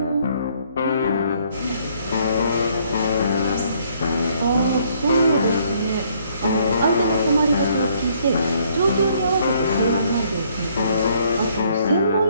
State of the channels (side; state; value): both; inverted; correlation -0.65